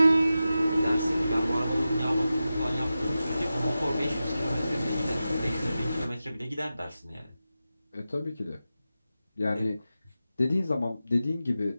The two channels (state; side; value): inverted; both; correlation -0.93